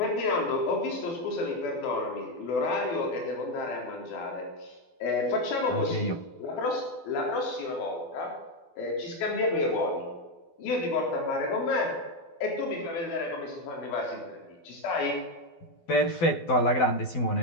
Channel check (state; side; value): late; right; 12 ms